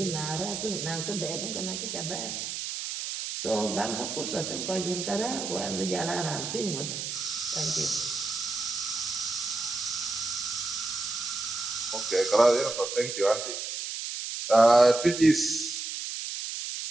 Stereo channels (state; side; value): noise; right; hiss, 5 dB below the sound